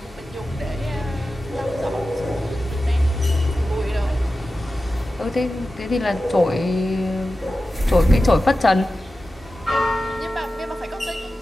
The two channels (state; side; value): normal; both; correlation 0.93